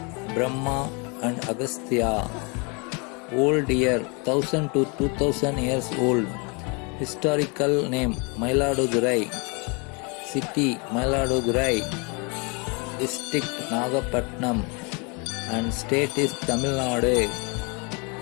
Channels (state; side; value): quieter; right; 31.8 dB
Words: Brahma and Agastya. Old year 1000 to 2000 years old. Historical name Mayiladurai. City Mayiladurai. District Nagapatnam. And state is Tamil Nadu.